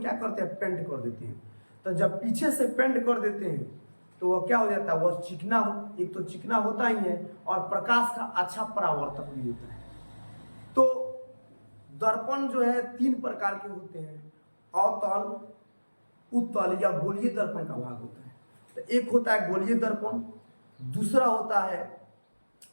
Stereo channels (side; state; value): both; inverted; correlation -1.00